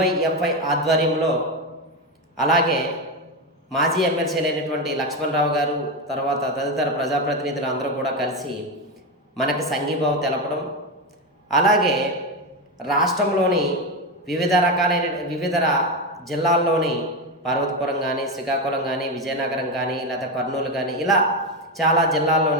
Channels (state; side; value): normal; both; correlation 0.14